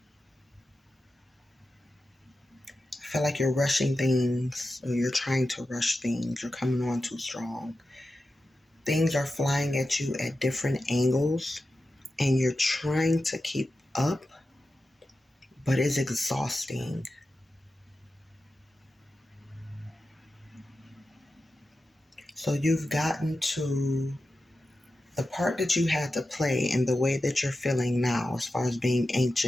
feel like you're rushing things, or you're trying to rush things. You're coming on too strong. Things are flying at you at different angles, and you're trying to keep up, but it's exhausting. So you've gotten to the part that you had to play in the way that you're feeling now, as far as being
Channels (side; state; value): both; normal; correlation 0.92